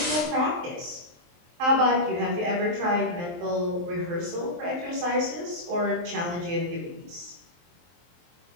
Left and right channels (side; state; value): left; late; 23 ms